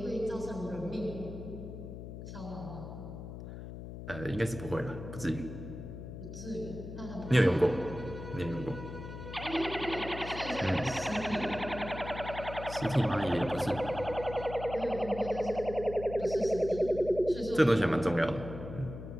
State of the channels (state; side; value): noise; left; hum, 10 dB below the sound